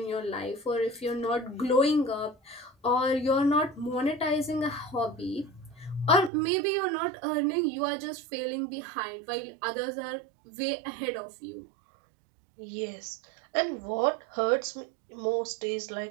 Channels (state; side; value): drops out; left; at 6.3 s